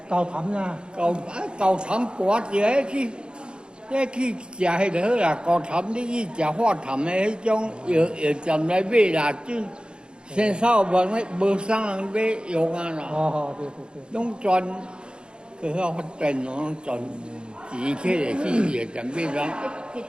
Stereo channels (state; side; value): late; left; 0.052 ms